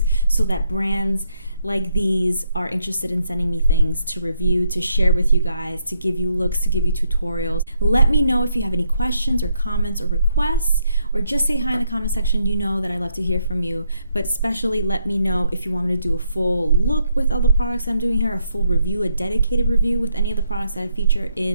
so that brands like these are interested in sending me things to review, to share with you guys, to give you looks, to give you tutorials. Let me know if you have any questions or comments or requests, or just say hi in the comment section. You know that I love to hear from you, but especially let me know if you want me to do a full look with all the products I'm doing here, a full review, a dedicated review with any of the products that I feature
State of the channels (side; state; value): both; inverted; correlation -0.76